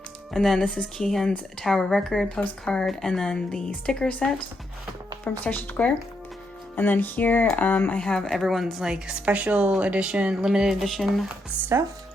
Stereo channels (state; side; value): normal; both; correlation 0.80